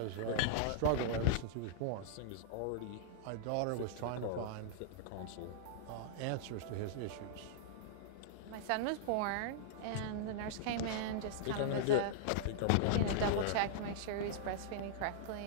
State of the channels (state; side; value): different; both; correlation -0.02